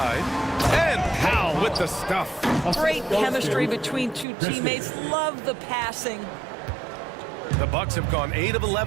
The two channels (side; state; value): left; drops out; at 4.2 s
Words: And Powell with the stuff. Great chemistry between 2 teammates. Love the passing. The Bucks have gone 8 of